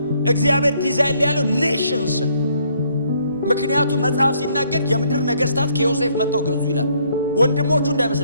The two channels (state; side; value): inverted; both; correlation -0.68